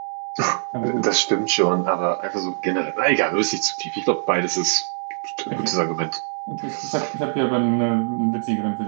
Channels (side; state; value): left; silent; digital silence